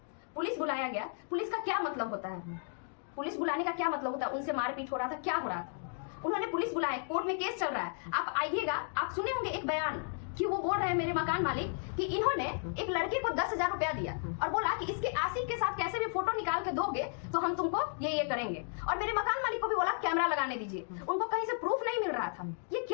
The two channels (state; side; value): silent; right; 55 dB below the other